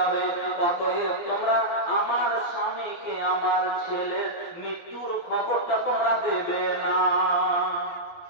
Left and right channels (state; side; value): late; right; 12 ms